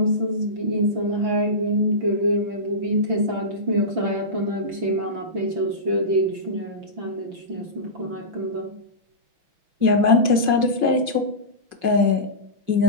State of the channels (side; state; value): left; late; 5.5 ms